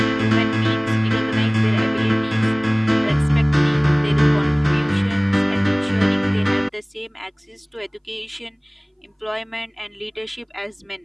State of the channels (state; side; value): identical; both; correlation 1.00